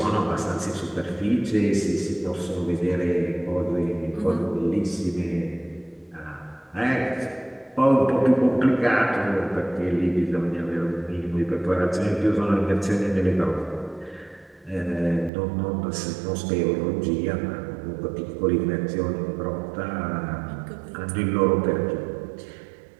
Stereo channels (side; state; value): left; drops out; at 15.3 s